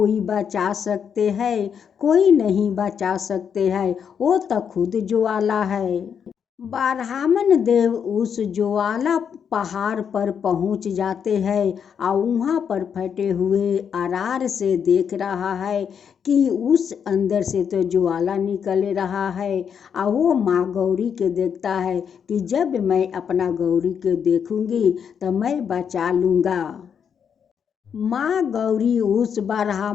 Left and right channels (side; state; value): right; quieter; 7.4 dB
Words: बचा सकते हैं? कोई नहीं बचा सकते हैं, वो तो खुद ज्वाला है। ब्राह्मण देव उस ज्वाला पहाड़ पर पहुंच जाते हैं और वहाँ पर फटे हुए अरार से देख रहा है कि उस अंदर से तो ज्वाला निकल रहा है। और वो माँ गौरी के देखता है कि जब मैं अपना गौरी के देखूंगी तो मैं बचा लूँगा। माँ गौरी उस